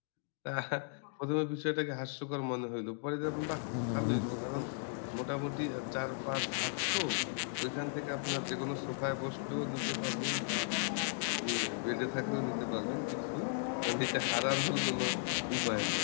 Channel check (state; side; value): silent; right; digital silence